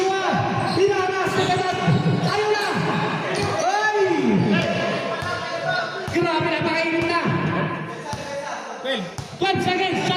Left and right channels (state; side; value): identical; both; correlation 1.00